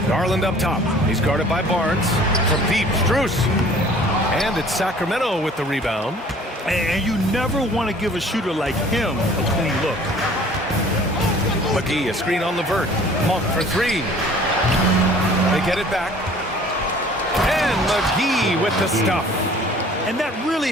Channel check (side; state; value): both; normal; correlation 0.51